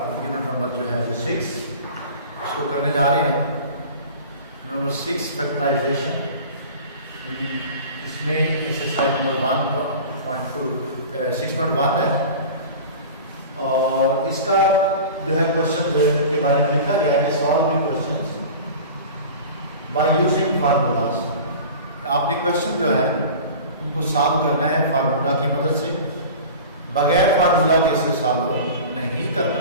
यूनिट नंबर जो है 6 उसको करने जा रहे हैं। Number 6 factorisation. इसमें एक्सरसाइज नंबर 1.2 6.1 है और इसका जो है क्वेश्चन के बारे में लिखा गया है solving questions by using formulas. आपने क्वेश्चन जो है उनको सॉल्व करना है फार्मूला की मदद से, बगैर फार्मूला के इसे सॉल्व नहीं करना।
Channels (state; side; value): inverted; both; correlation -0.37